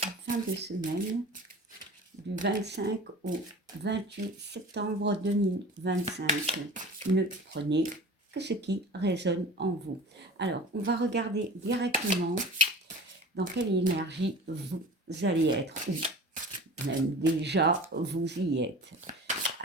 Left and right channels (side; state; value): both; normal; correlation 0.38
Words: fin de semaine du 25 au 28 septembre 2025. Ne prenez que ce qui résonne en vous. Alors on va regarder directement dans quelle énergie vous allez être, ou même déjà vous y êtes.